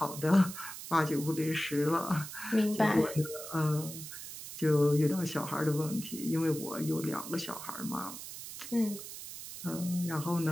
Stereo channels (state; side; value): noise; right; hiss, 11 dB below the sound